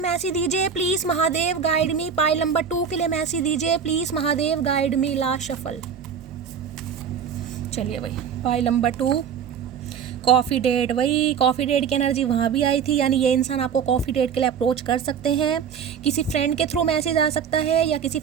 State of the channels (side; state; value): left; quieter; 7.3 dB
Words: दीजिए please Mahadev, guide me. Pile number 2 के लिए मैसेज दीजिए please Mahadev, guide me. Last shuffle. चलिए भाई पाइल नंबर 2, कॉफ़ी डेट, वही कॉफ़ी डेट की एनर्जी वहाँ भी आई थी, यानी ये इंसान आपको कॉफ़ी डेट के लिए अप्रोच कर सकते हैं। किसी फ्रेंड के थ्रू मैसेज आ सकता है, या किसी